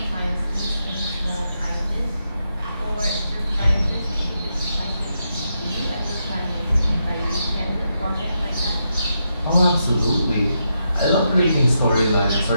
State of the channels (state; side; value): inverted; both; correlation -0.83